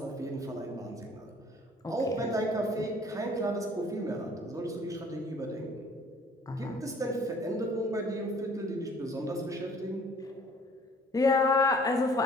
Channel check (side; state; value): both; normal; correlation 0.55